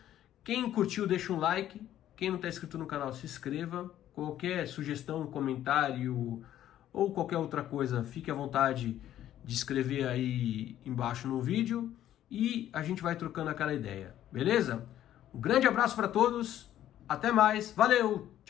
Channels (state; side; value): quieter; right; 12.0 dB